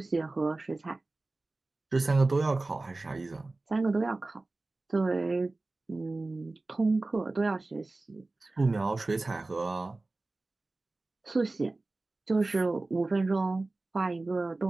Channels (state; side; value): quieter; left; 3.2 dB